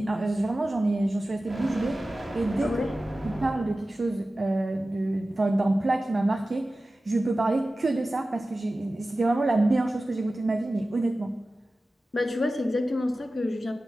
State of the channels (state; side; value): normal; both; correlation 0.96